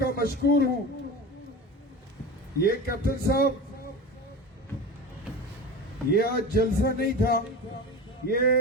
مشکور ہوں. یہ کیپٹن صاحب، یہ آج جلسہ نہیں تھا، یہ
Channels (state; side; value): normal; both; correlation 0.29